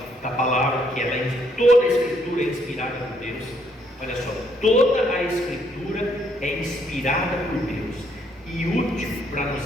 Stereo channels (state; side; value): normal; both; correlation 0.70